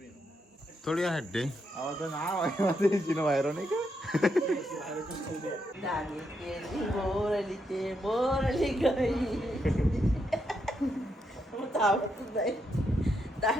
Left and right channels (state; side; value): normal; both; correlation 0.80